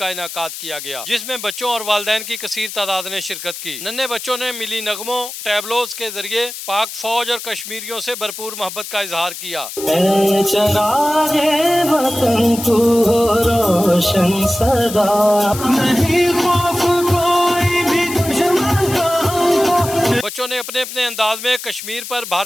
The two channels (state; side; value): noise; left; hiss, 10 dB below the sound